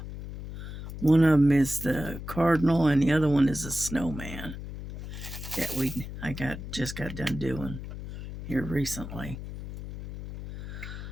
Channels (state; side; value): noise; left; hum, 9 dB below the sound